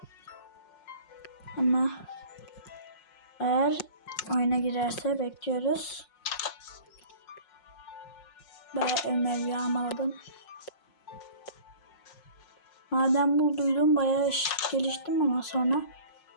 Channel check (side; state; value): right; late; 5.5 ms